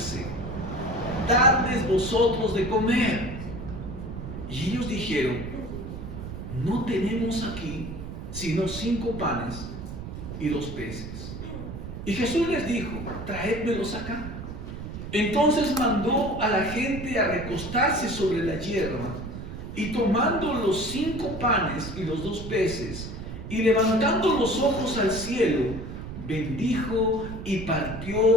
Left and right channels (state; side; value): noise; right; rumble, 9 dB below the sound